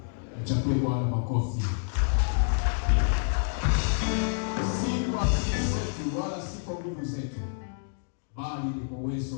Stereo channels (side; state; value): right; silent; digital silence